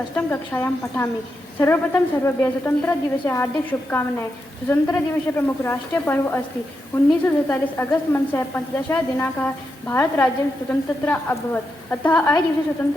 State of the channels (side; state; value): both; normal; correlation 0.85